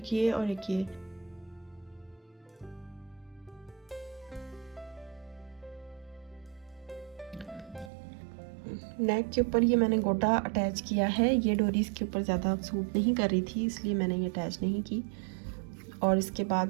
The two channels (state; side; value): drops out; left; at 7.9 s